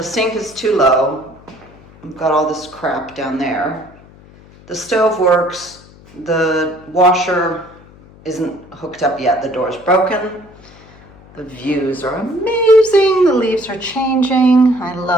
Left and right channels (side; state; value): left; noise; hum, 23 dB below the sound